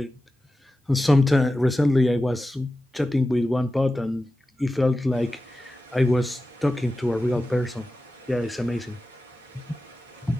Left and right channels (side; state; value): both; normal; correlation 0.93